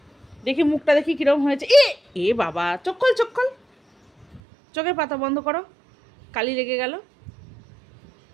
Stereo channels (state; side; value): drops out; left; at 4.4 s